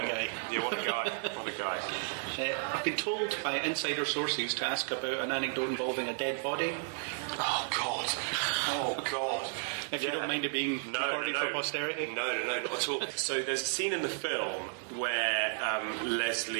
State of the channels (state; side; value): silent; left; 56 dB below the other